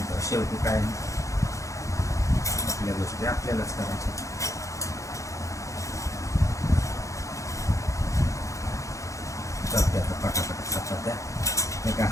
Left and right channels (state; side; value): late; right; 0.15 ms